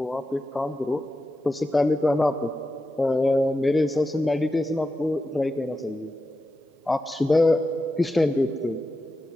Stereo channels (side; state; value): both; normal; correlation 0.90